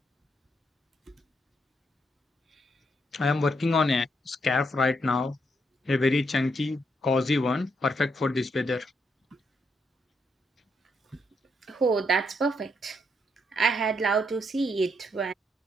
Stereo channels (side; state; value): both; normal; correlation 0.77